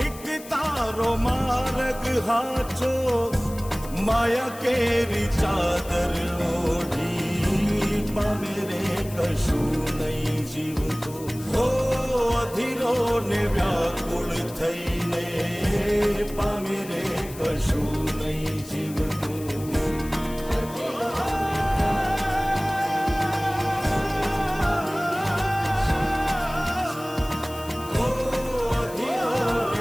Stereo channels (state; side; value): noise; left; hiss, 17 dB below the sound